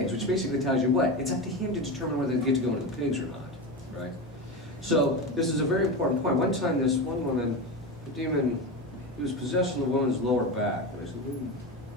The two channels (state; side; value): normal; both; correlation 0.21